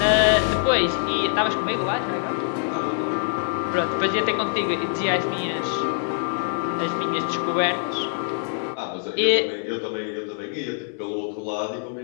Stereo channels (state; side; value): silent; right; 62 dB below the other